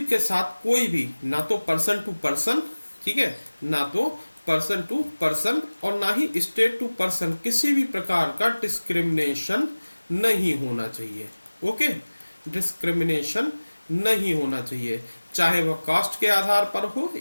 के साथ कोई भी ना तो पर्सन टू पर्सन, ठीक है, ना तो पर्सन टू पर्सन और ना ही स्टेट टू पर्सन किसी भी प्रकार का डिस्क्रिमिनेशन नहीं होना चाहिए। ओके, डिस्क्रिमिनेशन नहीं होना चाहिए, चाहे वह कास्ट के आधार पर हो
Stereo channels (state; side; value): inverted; both; correlation -1.00